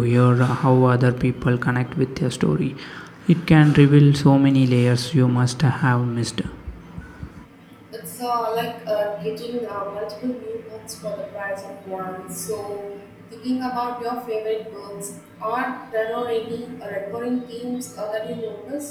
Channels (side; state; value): both; identical; correlation 1.00